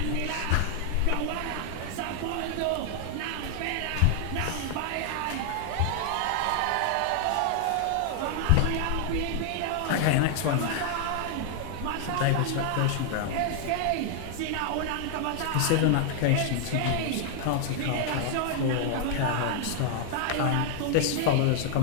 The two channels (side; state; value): both; different; correlation 0.00